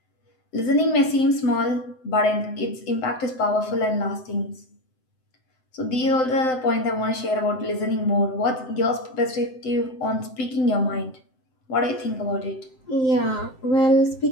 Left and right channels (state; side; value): late; right; 7.8 ms